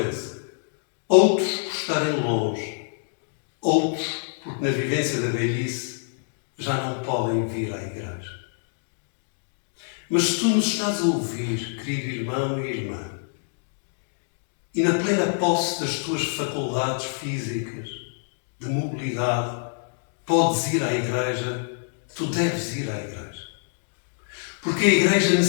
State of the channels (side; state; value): right; silent; digital silence